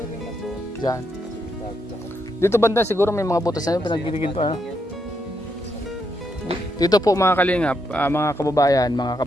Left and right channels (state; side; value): normal; both; correlation 0.79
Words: Diyan. Dito banda siguro may mga butas na yun, pinagbiligin pa. Ano? Dito po mga kalingap, mga kababayan, mga